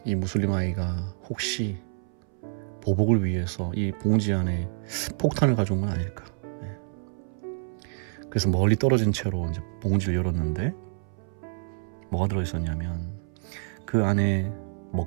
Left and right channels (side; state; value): left; silent; 60 dB below the other